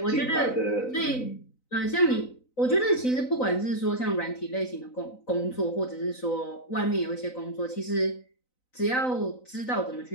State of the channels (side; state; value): right; late; 3.9 ms